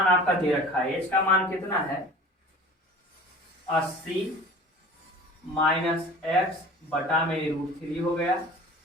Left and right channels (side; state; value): both; normal; correlation 0.42